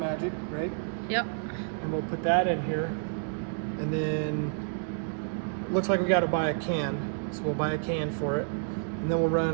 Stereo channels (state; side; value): silent; left; digital silence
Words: right? Yep. And we'll put that in here. And then looks like we got to buy a can. So we'll buy a can for it. And then we'll